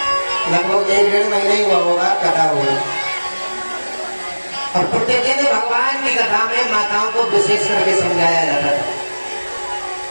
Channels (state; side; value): inverted; both; correlation -1.00